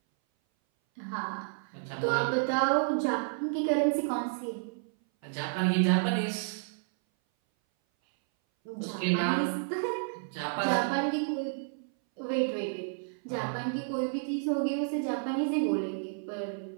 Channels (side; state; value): left; silent; 57 dB below the other